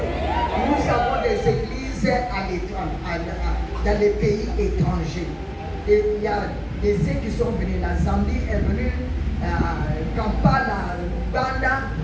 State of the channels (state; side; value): identical; both; correlation 1.00